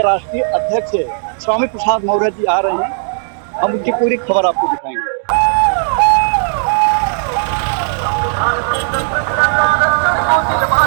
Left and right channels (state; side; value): silent; left; digital silence